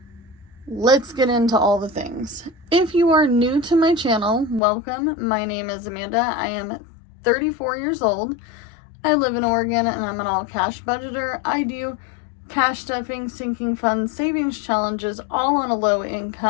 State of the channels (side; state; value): right; drops out; at 4.6 s